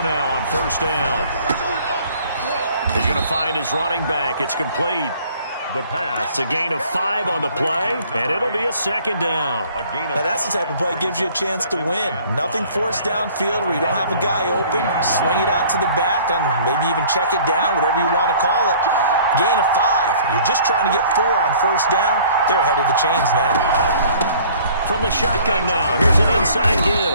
now on first down. He's going to find his running back. It's complete. The pass. It's a gain of 5 on the play, and it'll be a second down. Now that's the type of play that gives you a chance to win. Nothing forced downfield where you don't have a guy open. Swing it out to the back, and maybe even check it down, whatever you want to call it. Gain of 5. You're just trying to get 4 on first down. They're ahead of the chains now. From the shotgun now, here's an inside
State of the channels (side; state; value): both; inverted; correlation -0.53